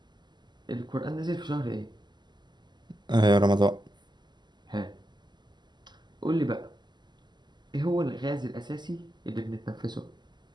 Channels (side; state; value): left; late; 0.21 ms